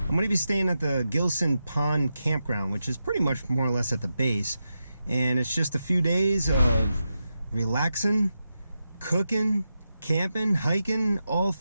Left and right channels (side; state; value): both; inverted; correlation -0.89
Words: going to be staying at the Gilson Park campground, which is pretty much more or less at the base. And it's just a few days of relaxing, cooking, camping, hiking, all